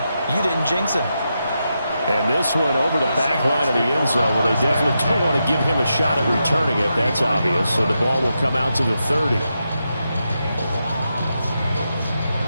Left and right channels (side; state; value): both; inverted; correlation -0.86